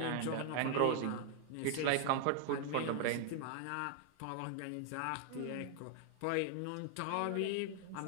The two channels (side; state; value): both; different; correlation 0.00